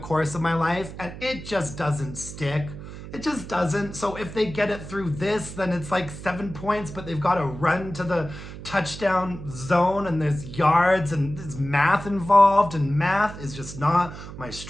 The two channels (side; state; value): right; noise; hum, 12 dB below the sound